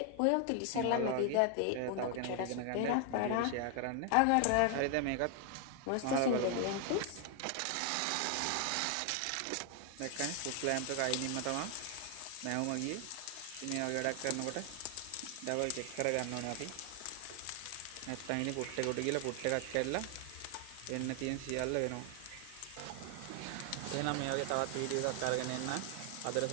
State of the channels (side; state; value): both; different; correlation 0.00